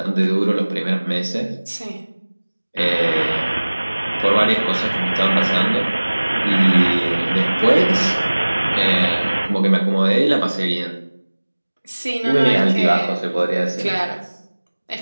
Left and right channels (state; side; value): inverted; both; correlation -1.00